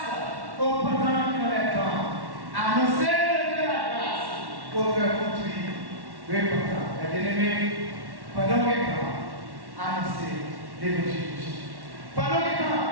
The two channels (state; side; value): late; left; 1.1 ms